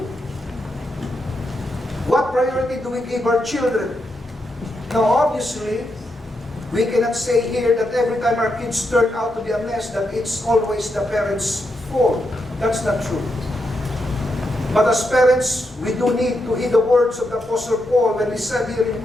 What priority do we give our children? Now, obviously, we cannot say here that every time our kids turn out to be a mess, that it's always the parents' fault. That's not true. But as parents, we do need to heed the words of the Apostle Paul when he said here in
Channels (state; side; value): normal; both; correlation 0.83